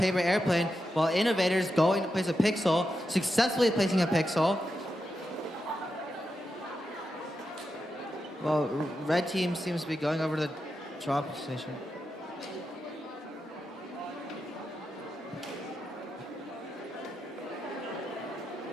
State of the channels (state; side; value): normal; both; correlation 0.87